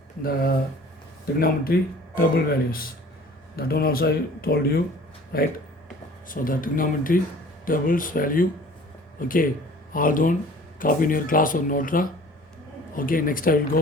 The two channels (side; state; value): both; normal; correlation 0.48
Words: the trigonometry table values. That one also I told you, right? So the trigonometry tables value, okay, all done, copy in your class or note. Okay, next I will